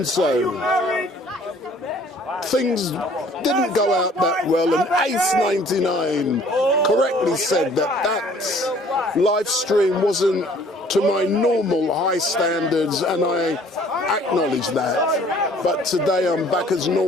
so, things didn't go out that well, and Ace99 correctly said that LiveStream wasn't to my normal high standards, and I acknowledge that. But today I'm back as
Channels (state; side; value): normal; both; correlation 0.56